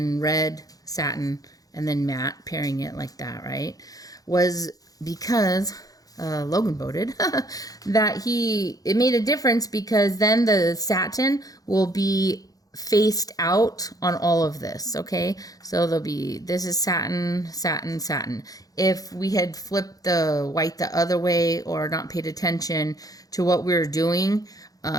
red satin, and then matte, pairing it like that, right? Was because Logan voted that it made a difference because then the satin will be faced out on all of this, okay? So this is satin, satin, satin. If we had flipped the white the other way or not paid attention to what we were doing,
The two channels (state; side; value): late; right; 0.18 ms